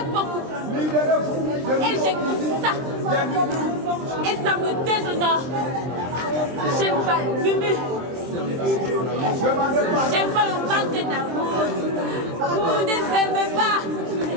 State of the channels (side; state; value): left; late; 23 ms